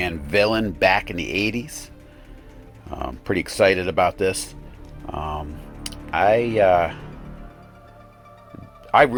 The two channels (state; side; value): identical; both; correlation 1.00